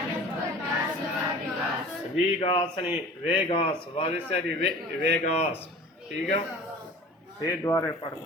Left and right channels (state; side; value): normal; both; correlation 0.42